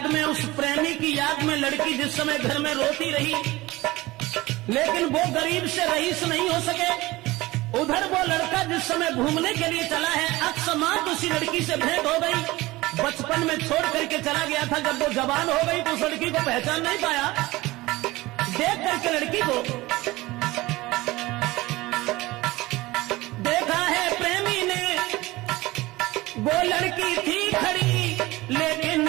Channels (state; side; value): quieter; left; 19.7 dB